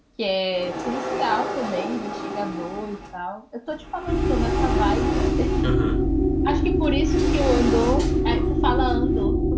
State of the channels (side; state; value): both; identical; correlation 1.00